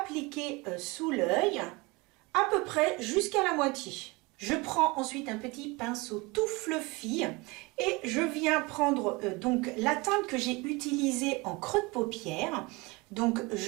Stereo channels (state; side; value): quieter; left; 25.1 dB